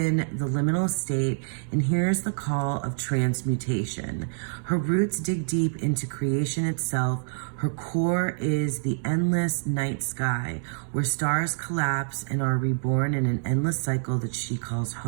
the liminal state and hears the call of transmutation. Her roots dig deep into creation itself. Her core is the endless night sky, where stars collapse and are reborn in an endless cycle that she calls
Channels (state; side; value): silent; left; digital silence